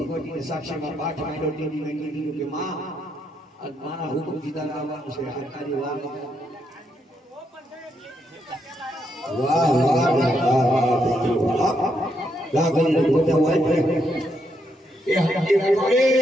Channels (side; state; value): both; normal; correlation 0.78